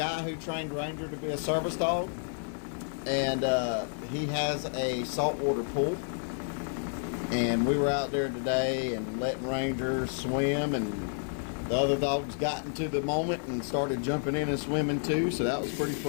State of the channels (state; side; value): silent; right; 58 dB below the other